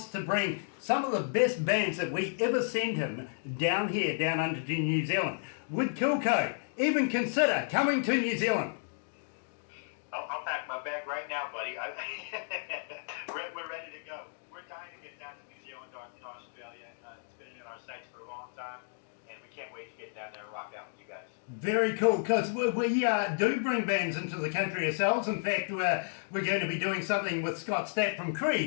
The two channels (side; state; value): right; silent; digital silence